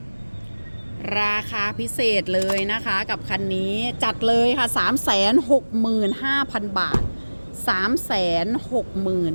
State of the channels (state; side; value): inverted; both; correlation -1.00